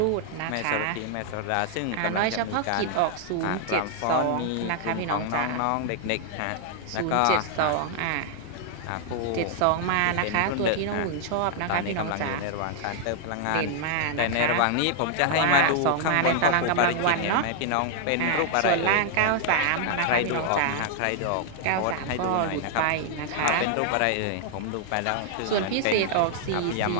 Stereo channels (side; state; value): both; different; correlation 0.00